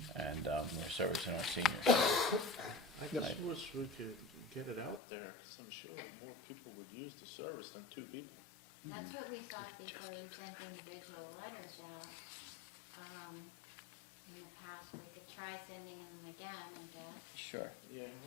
and we're servicing our seniors. I just wish we could get it out there, because I'm sure more people would use the service than two people. That's what we thought before we sent individual letters out. In the past, we could try sending them again, I guess. Sure. Yeah.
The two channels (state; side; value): drops out; right; at 5.0 s